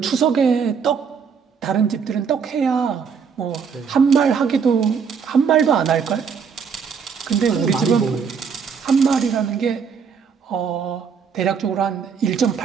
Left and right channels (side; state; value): left; quieter; 6.3 dB